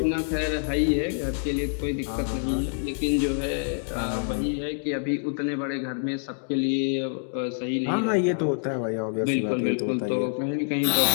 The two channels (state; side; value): silent; right; digital silence